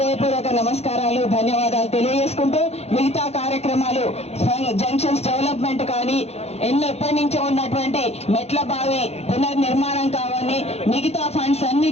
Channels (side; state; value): right; late; 0.31 ms